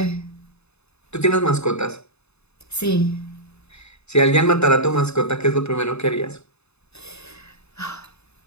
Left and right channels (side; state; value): right; late; 0.80 ms